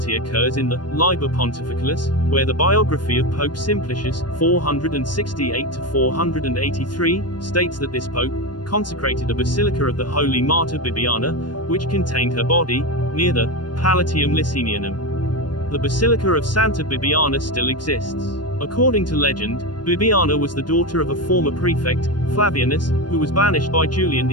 occurs in the Liber Pontificalis, where the biography of Pope Simplicius, 468–483, states that this pope consecrated a basilica of the holy martyr Bibiana, which contained her body, near the Palatium Licinianum. The Basilica of Santa Bibiana still exists. According to legend, Bibiana was the daughter of a former prefect, Flavianus, who was banished by Julian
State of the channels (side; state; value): right; late; 0.71 ms